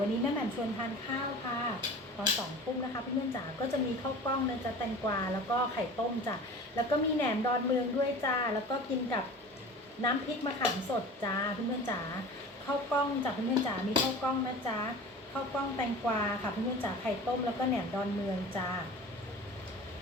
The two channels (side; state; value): both; normal; correlation 0.39